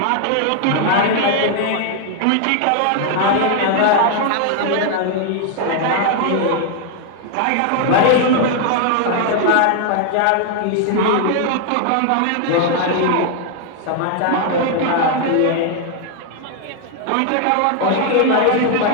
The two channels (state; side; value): different; both; correlation 0.00